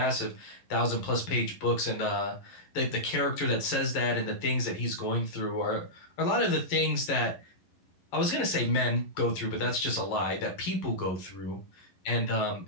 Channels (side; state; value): right; late; 11 ms